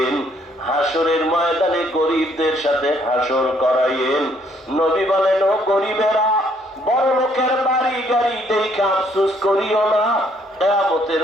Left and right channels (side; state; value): both; normal; correlation 0.67